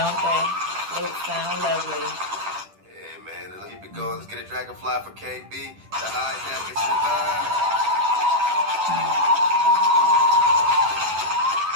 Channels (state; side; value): late; left; 10 ms